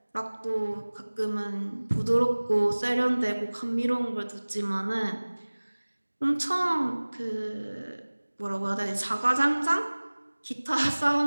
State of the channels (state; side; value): inverted; both; correlation -1.00